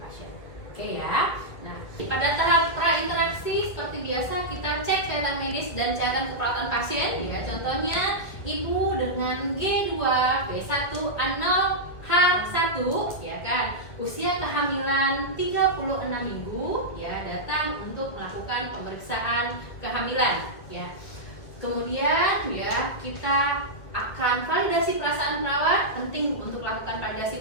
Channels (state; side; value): late; right; 2.2 ms